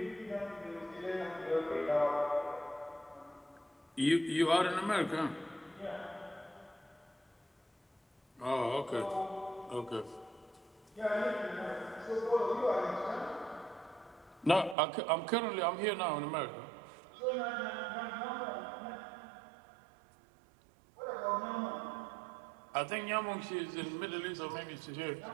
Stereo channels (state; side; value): drops out; left; at 14.8 s